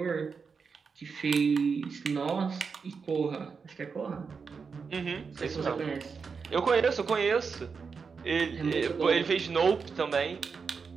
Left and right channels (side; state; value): left; quieter; 5.4 dB